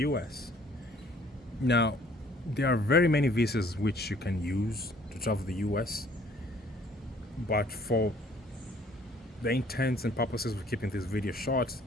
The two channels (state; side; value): normal; both; correlation 0.58